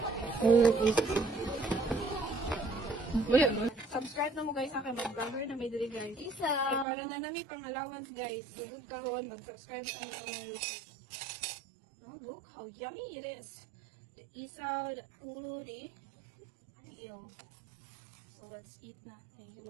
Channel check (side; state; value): left; drops out; at 6.9 s